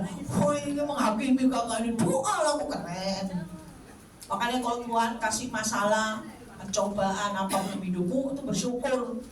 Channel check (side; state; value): both; identical; correlation 1.00